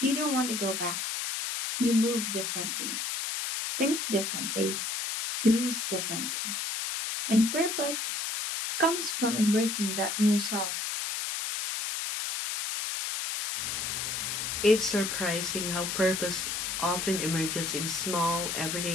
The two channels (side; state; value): left; noise; hiss, 2 dB below the sound